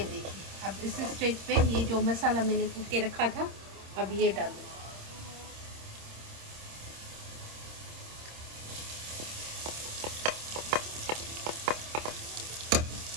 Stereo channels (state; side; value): late; left; 26 ms